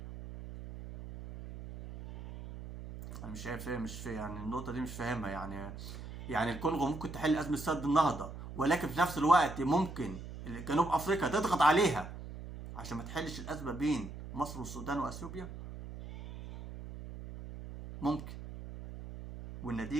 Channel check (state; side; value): noise; right; hum, 11 dB below the sound